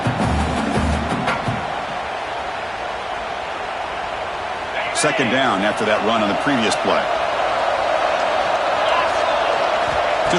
second down after that run on the previous play. To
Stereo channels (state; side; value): identical; both; correlation 1.00